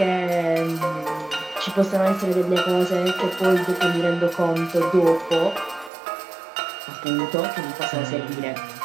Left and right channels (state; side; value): drops out; left; at 5.9 s